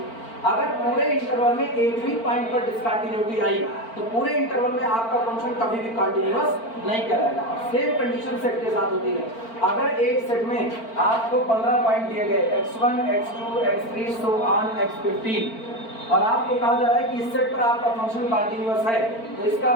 अगर पूरे इंटरवल में एक भी पॉइंट पर डिसकंटिन्यूटी आई तो पूरे इंटरवल में आपका फंक्शन कभी भी कंटिन्यूअस नहीं कहलाएगा। सेम कंडीशन सेट के साथ होती है। अगर एक सेट में आपको 15 पॉइंट दिए गए x1, x2, x3 so on x15 और आपको कहा जा रहा है कि इस सेट पर आपका फंक्शन कंटिन्यूअस है, तो इसका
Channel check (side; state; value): right; late; 4.4 ms